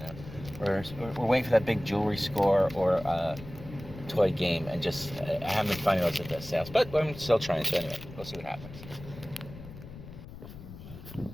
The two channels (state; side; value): noise; left; rumble, 14 dB below the sound